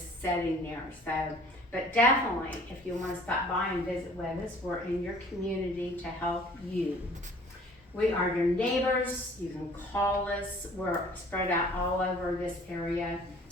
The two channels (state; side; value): normal; both; correlation 0.52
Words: sitting there. So, but definitely, if you want to stop by and visit with us, we're in your community to help you. We are your neighbors. You can call us. We're spread out all over this area.